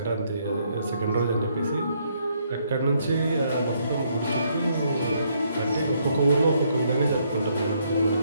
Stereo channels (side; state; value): both; inverted; correlation -0.71